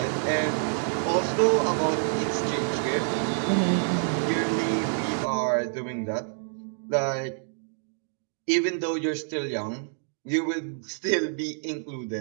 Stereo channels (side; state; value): left; silent; digital silence